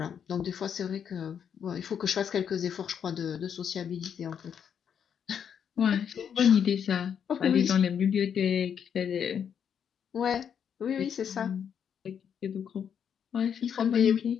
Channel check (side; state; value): right; quieter; 8.0 dB